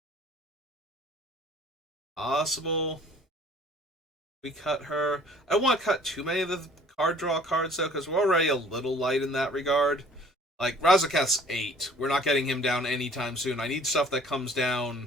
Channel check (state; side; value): normal; both; correlation 0.53